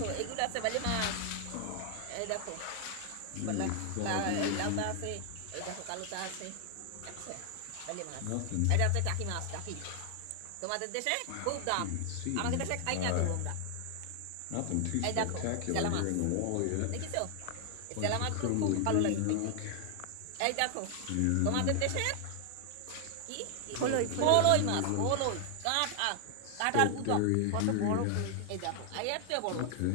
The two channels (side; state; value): both; different; correlation 0.00